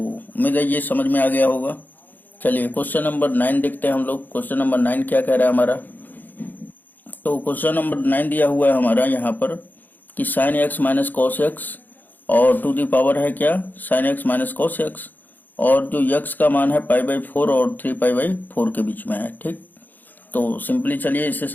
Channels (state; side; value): late; right; 0.086 ms